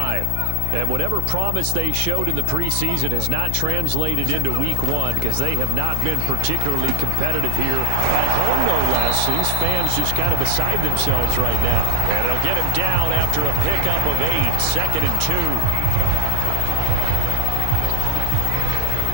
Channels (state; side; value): different; both; correlation 0.00